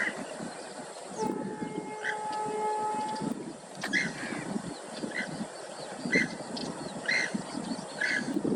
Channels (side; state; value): both; identical; correlation 1.00